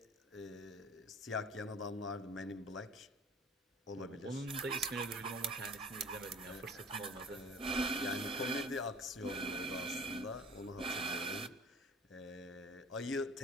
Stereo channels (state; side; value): normal; both; correlation 0.45